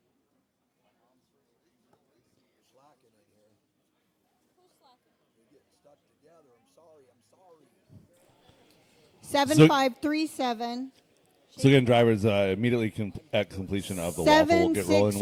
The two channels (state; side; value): identical; both; correlation 1.00